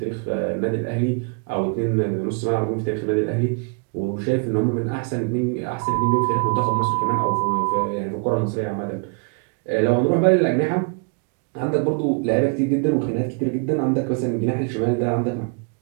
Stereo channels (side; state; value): left; quieter; 36.3 dB